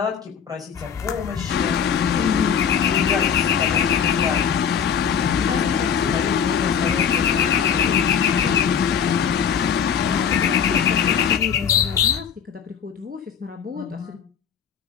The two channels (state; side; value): quieter; right; 7.6 dB